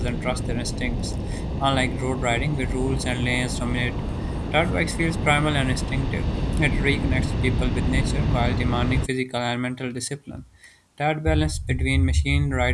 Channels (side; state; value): both; identical; correlation 1.00